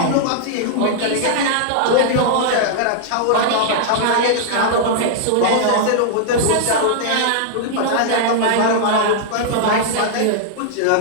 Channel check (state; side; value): different; both; correlation -0.01